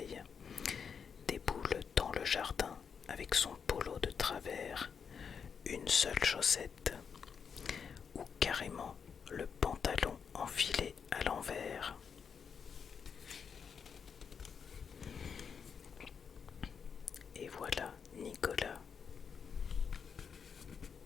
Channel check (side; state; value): right; quieter; 6.5 dB